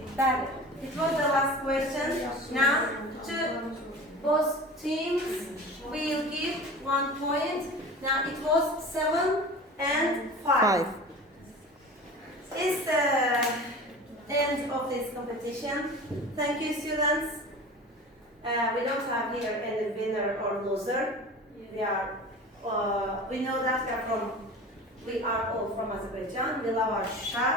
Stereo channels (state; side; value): normal; both; correlation 0.36